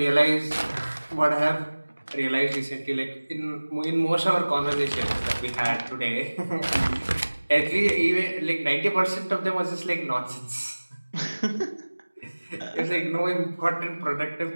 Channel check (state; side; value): inverted; both; correlation -1.00